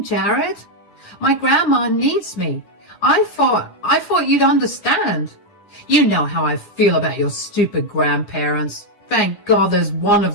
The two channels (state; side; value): late; right; 10 ms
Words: Jared? My grandma needs me. I thought you'd understand. You know how I feel about your stupid grandparents. Thank God there's one